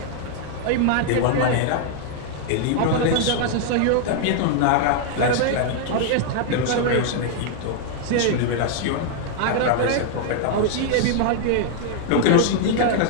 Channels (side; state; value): both; different; correlation 0.00